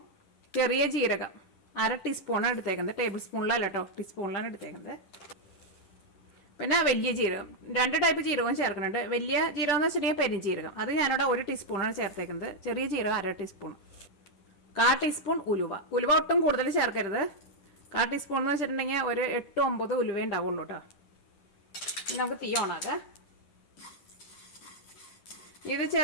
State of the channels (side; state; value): right; late; 10 ms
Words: ചെറിയ ജീരകം 1/2 ടീസ്പൂണാണ് എടുത്തേക്കുന്നത്. ടേബിൾ സ്പൂണിലല്ല കേട്ടോ, ടീസ്പൂണിലാണ് എടുത്തേക്കുന്നത്. പിന്നെ വലിയ ജീരകം, 2 ടൈപ്പ് ജീരകം ചേർക്കുന്നുണ്ട്. വലിയ ജീരകം എന്ന് വെച്ചിട്ടുണ്ടെങ്കിൽ പെരുംജീരകം, അത് ഞാനിവിടെ 1 ടീസ്പൂണാണ് ചേർത്തേക്കുന്നത്. ചെറിയ ജീരകം 1/2 ടീസ്പൂൺ. 1/4 ടീസ്പൂൺ ഉലുവ ഒട്ടും കൂടുതൽ ചേർക്കരുത്. 1/4 ടീസ്പൂൺ എന്ന് വെച്ചിട്ടുണ്ടെങ്കിൽ ഒരു 8-9 ഉലുവ ഉണ്ടാവുള്ളൂ കേട്ടോ. നമുക്ക് തീ ഓണാക്കാം. ഇത്